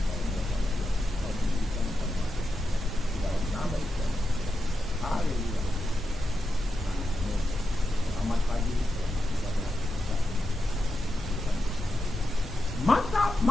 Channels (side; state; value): both; normal; correlation 0.88